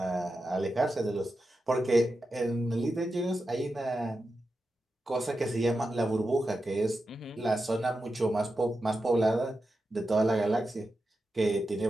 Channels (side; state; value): both; normal; correlation 0.90